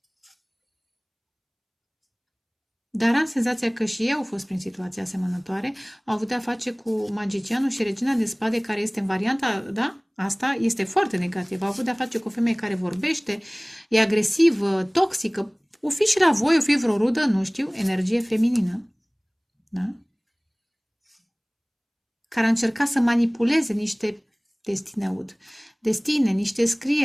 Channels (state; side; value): identical; both; correlation 1.00